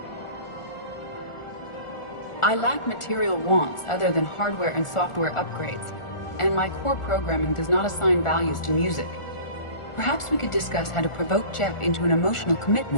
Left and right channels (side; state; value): right; late; 1.4 ms